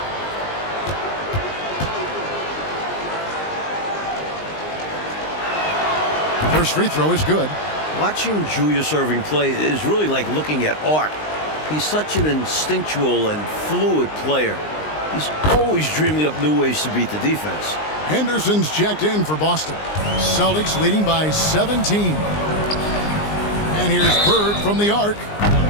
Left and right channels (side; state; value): right; late; 19 ms